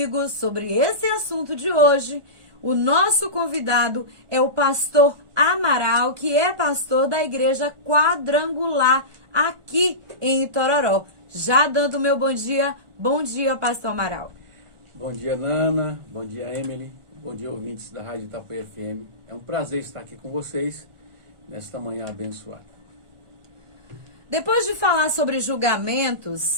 sobre esse assunto de hoje, o nosso convidado é o pastor Amaral, que é pastor da Igreja Quadrangular aqui em Itororó. Já dando meu bom dia, pastor Amaral. Bom dia, Nana, bom dia, Emily, bom dia, ouvintes da Rádio Itapuã FM. É um prazer estar aqui com vocês nesta manhã abençoada. Depois de falar sobre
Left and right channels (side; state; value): left; late; 1.4 ms